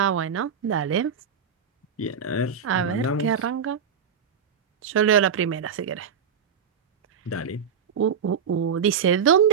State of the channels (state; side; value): quieter; left; 6.9 dB